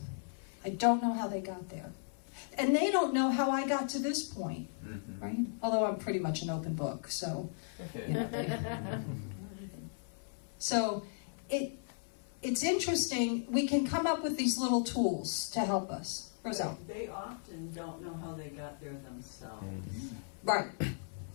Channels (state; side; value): silent; right; 54 dB below the other